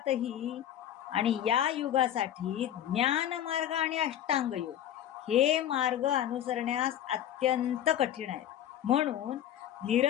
आणि या युगासाठी ज्ञान मार्ग आणि अष्टांग योग हे मार्ग अनुसरण्यास अत्यंत कठीण आहे. म्हणून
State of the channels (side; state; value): right; quieter; 11.0 dB